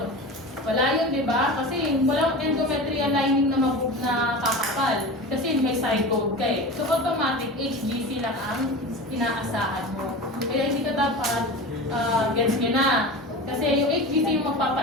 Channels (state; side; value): normal; both; correlation 0.30